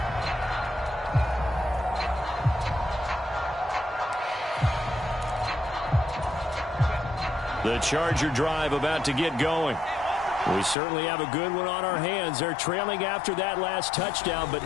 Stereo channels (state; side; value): drops out; right; at 10.8 s